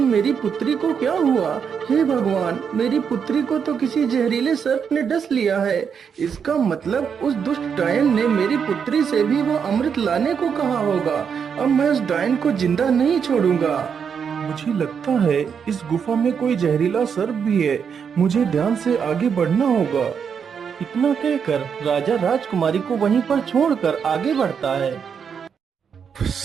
मेरी पुत्री को क्या हुआ? हे भगवान, मेरी पुत्री को तो किसी जहरीले सर्प ने डस लिया है। इसका मतलब उस दुष्ट डायन ने मेरी पुत्री से भी वो अमृत लाने को कहा होगा। अब मैं उस डायन को जिंदा नहीं छोड़ूंगा। मुझे लगता है इस गुफा में कोई जहरीला सर्प भी है, मुझे ध्यान से आगे बढ़ना होगा। इतना कहकर राजा राजकुमारी को वहीं पर छोड़कर आगे बढ़ता है।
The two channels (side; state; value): left; quieter; 6.9 dB